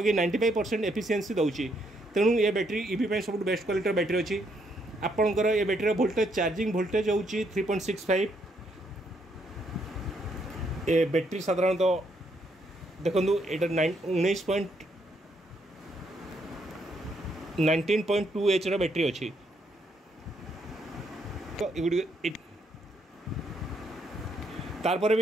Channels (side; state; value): both; normal; correlation 0.74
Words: 95% एफिशिएंसी दूसरी। तेणु ये बैटेरी ईवी सब बेस्ट क्वालिटी बैटेरी अच्छी। आपंकर ये बैटेरी वोल्टेज चार्जिंग वोल्टेज हूँ 3.65। ये बैटेरी साधारणतः देखो ये 19.2 H बैटेरी अच्छी। तो तारपर